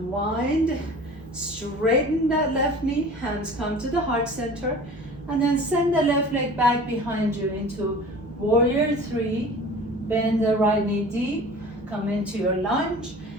Straighten that left knee, hands come to the heart center, and then send the left leg back behind you into warrior three. Bend the right knee deep, come into your lunge,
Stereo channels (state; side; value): normal; both; correlation 0.42